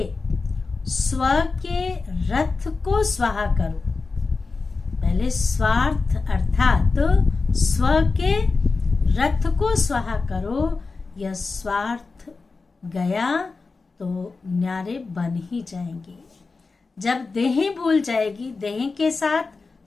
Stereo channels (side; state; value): right; quieter; 4.1 dB